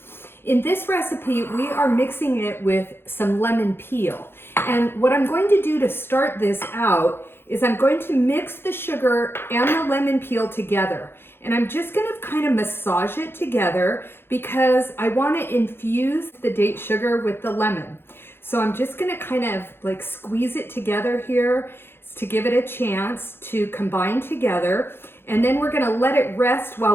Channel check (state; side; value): late; right; 0.11 ms